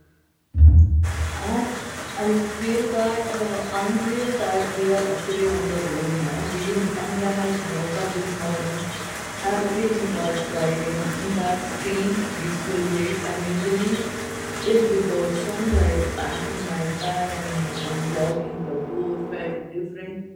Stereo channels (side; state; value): both; identical; correlation 1.00